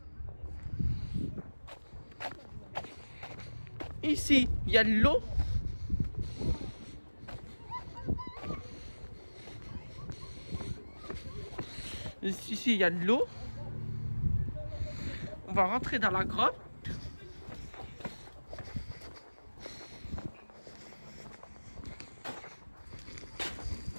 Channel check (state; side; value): inverted; both; correlation -1.00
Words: Ici, il y a de l'eau. Ici, il y a de l'eau. On va rentrer dans la grotte.